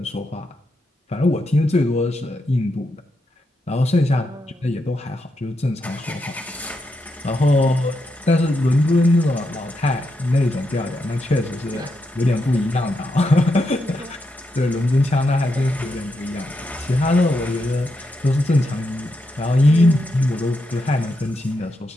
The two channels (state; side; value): normal; both; correlation 0.83